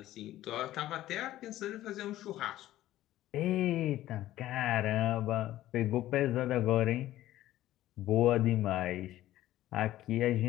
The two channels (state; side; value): quieter; right; 14.4 dB